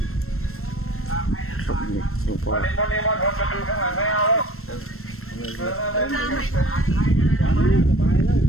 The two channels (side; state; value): right; late; 0.62 ms